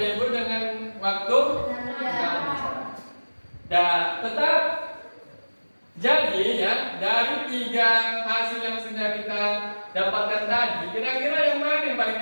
dengan waktu 6 jam. Dan tetap jadi ya, dari 3 hasil yang sudah kita dapatkan tadi, kira-kira yang mana yang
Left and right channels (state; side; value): inverted; both; correlation -1.00